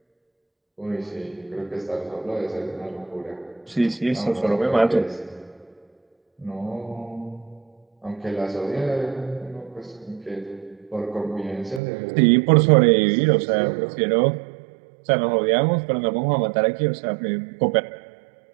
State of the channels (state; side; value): drops out; left; at 11.8 s